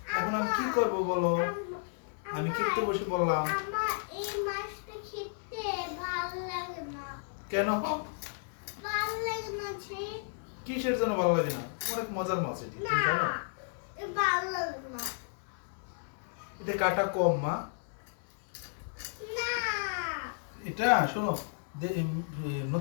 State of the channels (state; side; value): silent; right; digital silence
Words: এখন আমি কি করব বলো? আমি খেতে বসে বললাম। আমার এই মাছটা খেতে ভালো লাগে না। কেন? ভালো লাগে না যে। কিসের জন্য ভালো লাগে না? অনেক মজার মাছ এটি, তুমি জানো? ভালো লাগে না। এটা কাটা কম মা। না। এটা শোনো,